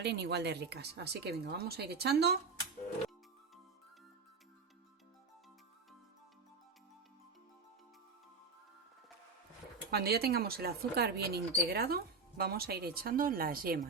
igual de ricas. Así que venga, vamos a ir echando. Cuando ya tengamos el azúcar bien integrado, vamos a ir echando las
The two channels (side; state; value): left; quieter; 4.4 dB